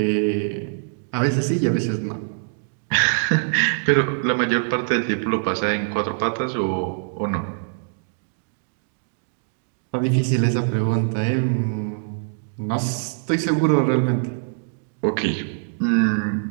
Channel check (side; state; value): left; silent; digital silence